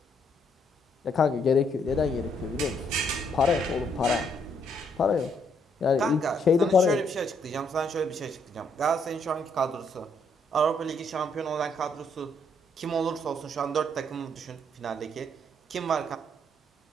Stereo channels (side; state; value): both; normal; correlation 0.72